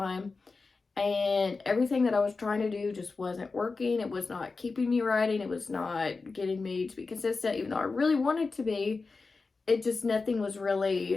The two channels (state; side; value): quieter; right; 4.1 dB